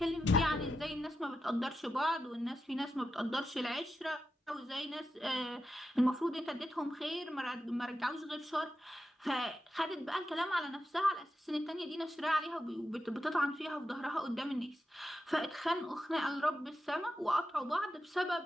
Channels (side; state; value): both; normal; correlation 0.89